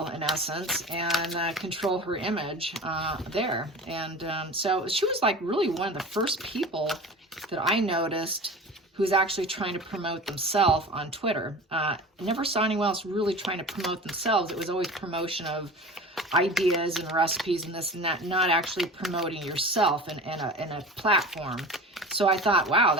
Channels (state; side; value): normal; both; correlation 0.35